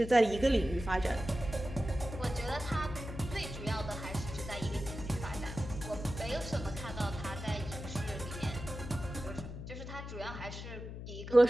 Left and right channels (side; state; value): left; noise; hum, 9 dB below the sound